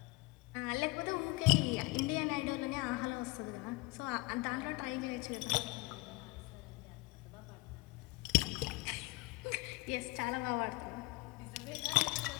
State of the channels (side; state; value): right; quieter; 24.1 dB